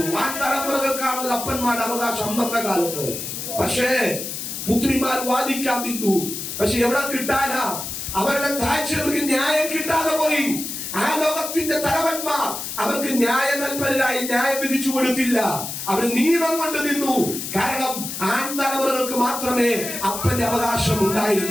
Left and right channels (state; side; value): noise; left; hiss, 6 dB below the sound